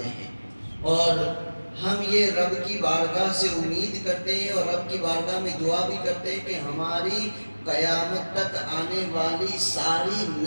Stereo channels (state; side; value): inverted; both; correlation -1.00